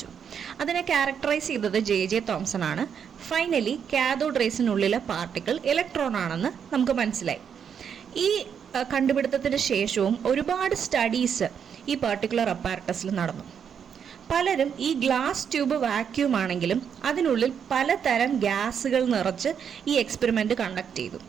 അതിനെ ക്യാരക്ടറൈസ് ചെയ്തത് ജെ തോംസൺ ആണ്. ഫൈനലി കാഥോഡ് റേസിനുള്ളിലെ പാർട്ടിക്കിൾ ഇലക്ട്രോൺ ആണെന്ന് നമുക്ക് മനസ്സിലായി. ഈ കണ്ടുപിടുത്തത്തിന് ശേഷവും ഒരുപാട് സ്റ്റഡീസ് ഈ പെർട്ടിക്കുലർ അപ്പാരറ്റസിൽ നടന്നു. പലരും ഈ ഗ്ലാസ് ട്യൂബ് വാക്യൂം ആണെങ്കിലും അതിനുള്ളിൽ പലതരം ഗ്യാസുകൾ നിറച്ച് ഈ എക്സ്പെരിമെൻ്റ് കണ്ടക്ട് ചെയ്തു.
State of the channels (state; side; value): quieter; left; 7.6 dB